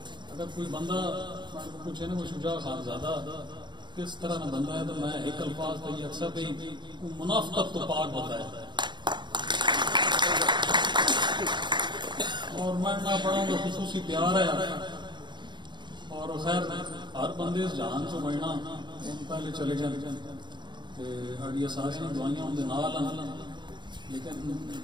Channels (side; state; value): left; late; 0.22 ms